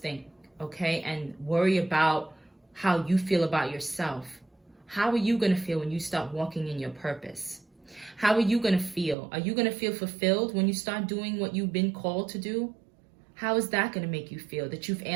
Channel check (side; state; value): left; drops out; at 9.2 s